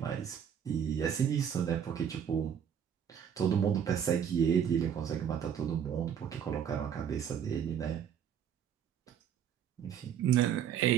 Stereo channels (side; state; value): left; quieter; 8.4 dB